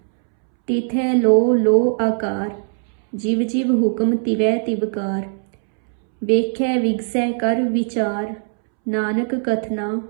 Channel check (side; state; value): left; silent; 66 dB below the other